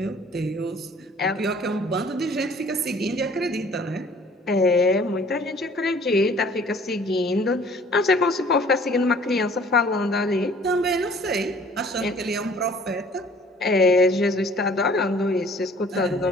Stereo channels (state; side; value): normal; both; correlation 0.53